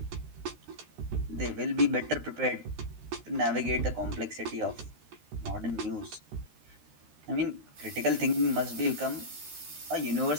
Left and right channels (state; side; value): late; left; 13 ms